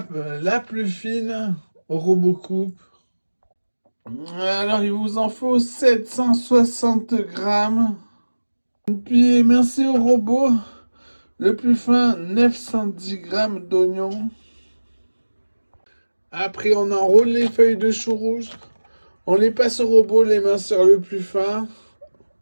la plus fine au robot coupe. Alors, il vous en faut 760 grammes. Puis, merci au robot. Le plus fin, 910 grammes d'oignons. Après, on enroule les feuilles de chou rouge. On les passe au robot, les mains sur le plus fin.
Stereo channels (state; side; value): inverted; both; correlation -1.00